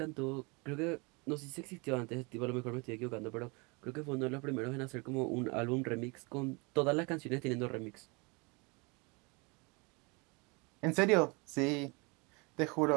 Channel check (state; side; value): quieter; left; 29.3 dB